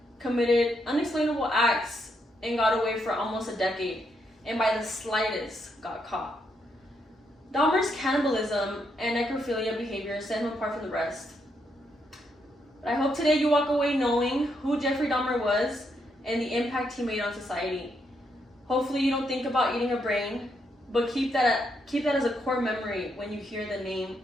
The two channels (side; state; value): both; normal; correlation 0.78